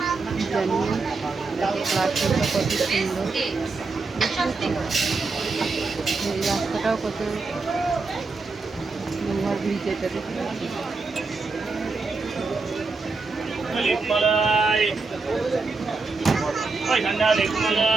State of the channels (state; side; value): quieter; left; 4.0 dB